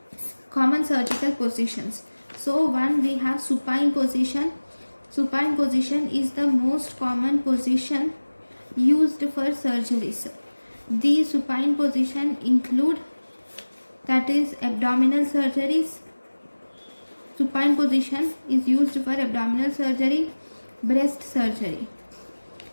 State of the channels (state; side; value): inverted; both; correlation -1.00